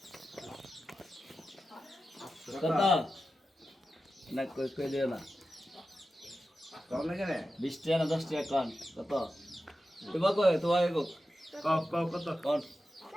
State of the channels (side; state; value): both; normal; correlation 0.92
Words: কত না কই দিও না 20 টাকা না 10 টাকা কোন কত তোমার কই তোমার কো কত কোন